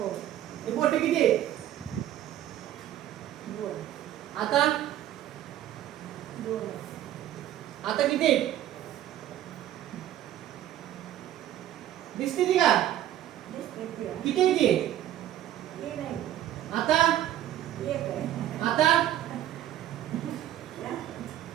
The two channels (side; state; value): left; quieter; 12.4 dB